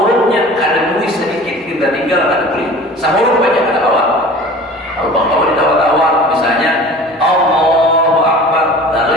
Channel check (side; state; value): both; normal; correlation 0.41